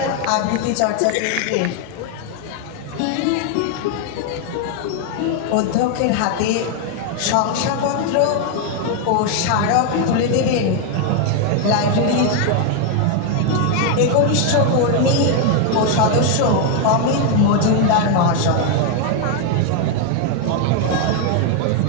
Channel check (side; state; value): both; different; correlation 0.00